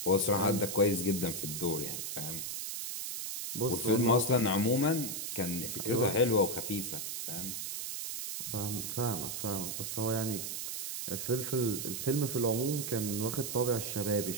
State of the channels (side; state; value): right; noise; hiss, 5 dB below the sound